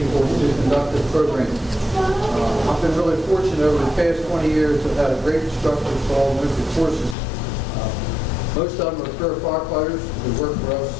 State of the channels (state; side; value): drops out; right; at 7.2 s